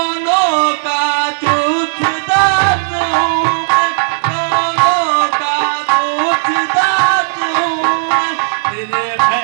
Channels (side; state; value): left; silent; digital silence